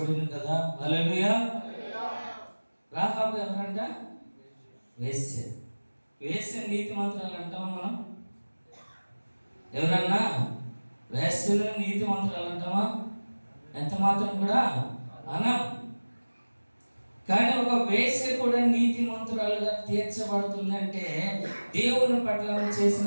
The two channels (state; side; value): inverted; both; correlation -1.00